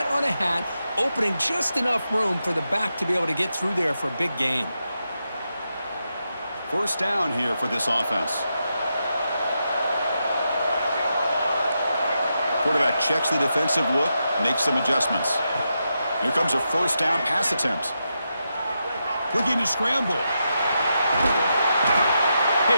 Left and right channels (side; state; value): both; inverted; correlation -0.86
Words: on a hat, opening just enough room for the back to be able to get through there for a big gain. First down here for this offense. Quarterback checks the defensive look, makes some adjustments. Here comes a first down pass attempt. Looking to scramble.